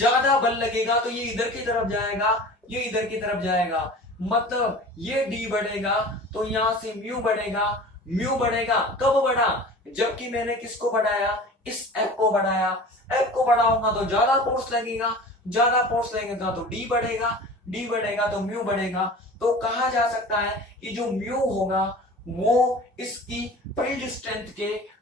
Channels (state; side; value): normal; both; correlation 0.39